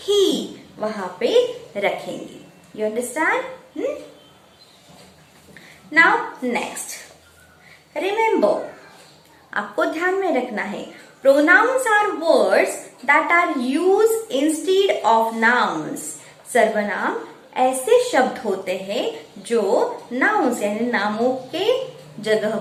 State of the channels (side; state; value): both; identical; correlation 1.00